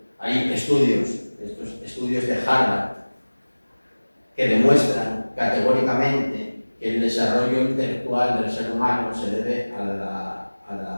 Hay estudios, estos estudios de Harvard, que demuestran categóricamente que el desarrollo intelectual del ser humano se debe a la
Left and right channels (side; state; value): both; inverted; correlation -1.00